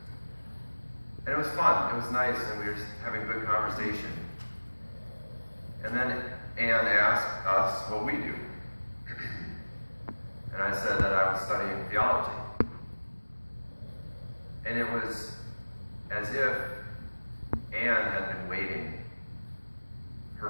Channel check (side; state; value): both; inverted; correlation -1.00